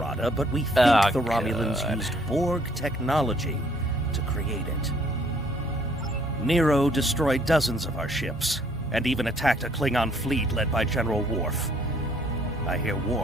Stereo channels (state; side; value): normal; both; correlation 0.63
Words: but we think the Romulans used Borg technology to create it. Nero destroyed dozens of our ships, and even attacked a Klingon fleet led by General Worf. I hear